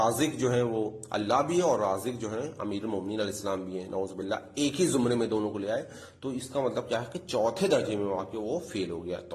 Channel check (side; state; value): both; identical; correlation 1.00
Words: جو ہے وہ اللہ بھی ہے اور رازق جو ہے امیر المومنین علیہ السلام بھی ہیں، نعوذ باللہ، ایک ہی زمرے میں دونوں کو لے آئے، تو اس کا مطلب کیا ہے کہ چوتھے درجے میں واقع وہ فیل ہو گیا۔